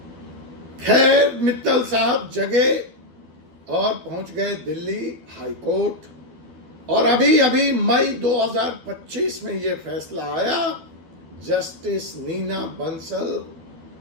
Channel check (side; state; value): left; late; 12 ms